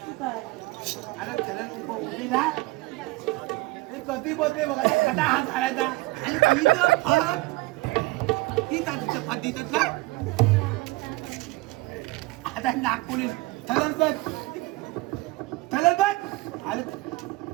अरे खरंच उभी ना कधी बोलते बघा. कसा हात घालायचा आणि तिचं फट ती तिचं फट देतात ना. आता नागपुरी थलर बघ थलर बघ. अरे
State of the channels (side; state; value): left; quieter; 21.8 dB